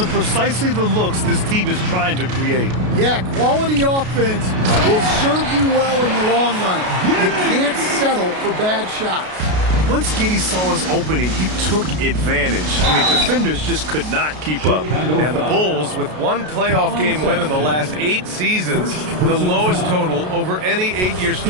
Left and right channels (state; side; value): late; left; 33 ms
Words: precisely the looks this team is trying to create. Yeah, quality offense will serve you well in the long run. You can't settle for bad shots. Once Giddey saw his opening, he took advantage. I mean, defenders just could not keep up. And the Bulls, with one playoff game win in the last 8 seasons, the lowest total over any 8-year